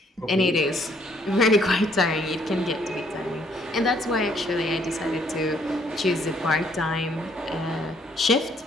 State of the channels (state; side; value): normal; both; correlation 0.66